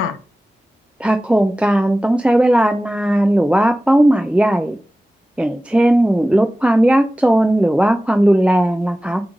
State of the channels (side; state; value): both; normal; correlation 0.96